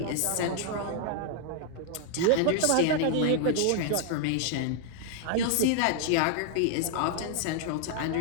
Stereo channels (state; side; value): different; both; correlation 0.00